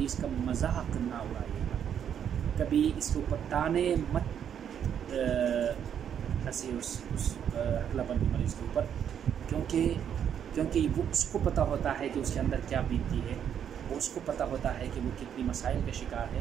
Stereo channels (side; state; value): left; quieter; 8.8 dB